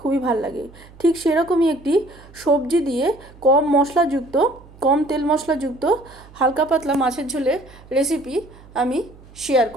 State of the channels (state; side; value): noise; right; hum, 23 dB below the sound